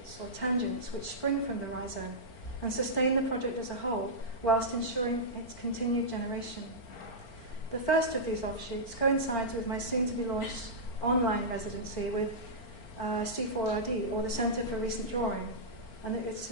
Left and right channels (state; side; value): late; right; 4.4 ms